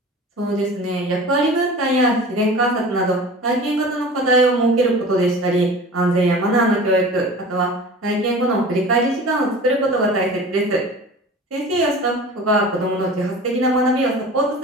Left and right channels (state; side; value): normal; both; correlation 0.38